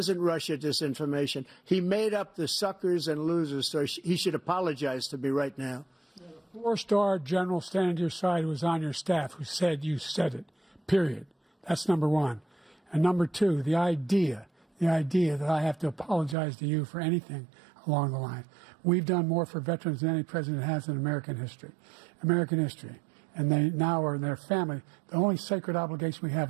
Russia disinformation. He made up the suckers and losers, so he should apologize to me right now. 4-star general standing to your side who was on your staff who said you said it, period. That's number one. And number two, the idea that I have to apologize to you for anything along the line. We've done more for veterans than any president has in American history. And they now are in their family. The only sacred obligation we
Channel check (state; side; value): drops out; left; at 16.4 s